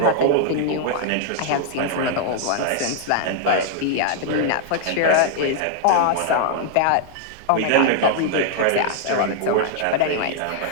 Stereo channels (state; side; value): different; both; correlation 0.00